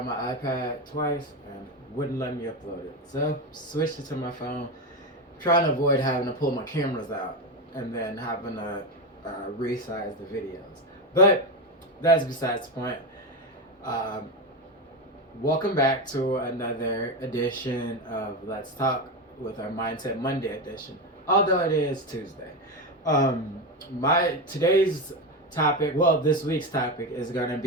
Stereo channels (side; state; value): both; normal; correlation 0.15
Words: my iPad twice and wouldn't let me upload it. So switched it to my phone, trying to avoid having to pull my cameras out and then having to resize the videos. But that's besides the point. Um, Welcome back to another edition of Let's Talk with our Mindset Monday edition, although it is Tuesday. My today's topic, well, this week's topic is going to